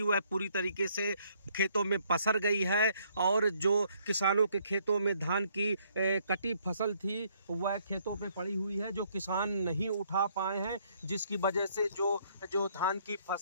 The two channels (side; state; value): both; inverted; correlation -0.67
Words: वह पूरी तरीके से खेतों में पसर गई है। और जो किसानों के खेतों में धान की कटी फसल थी वह खेतों पे पड़ी हुई है, जो किसान नहीं उठा पाए हैं, जिसकी वजह से जो धान की